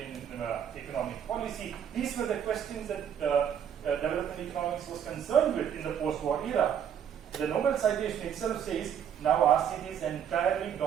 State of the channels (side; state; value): left; quieter; 8.7 dB